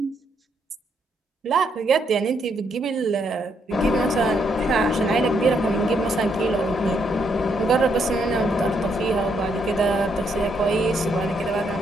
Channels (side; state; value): both; normal; correlation 0.75